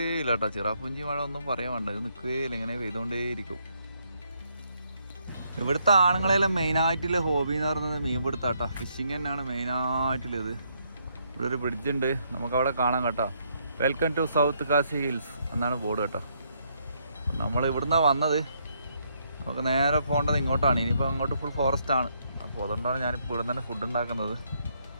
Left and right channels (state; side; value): inverted; both; correlation -0.73